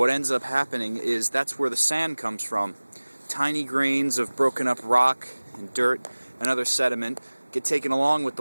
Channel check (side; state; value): both; inverted; correlation -1.00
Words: ends up happening is that's where the sand comes from. Tiny grains of broken up rock and dirt and other sediment get taken along with